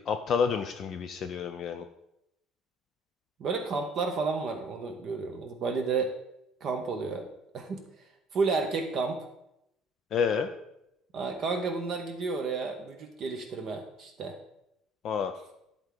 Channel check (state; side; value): normal; both; correlation 0.54